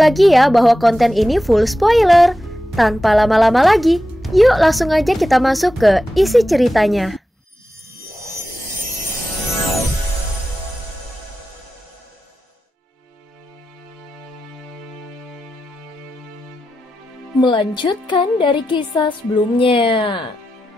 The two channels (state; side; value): normal; both; correlation 0.91